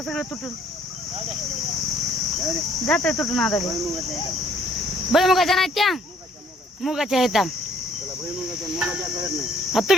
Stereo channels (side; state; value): both; normal; correlation 0.61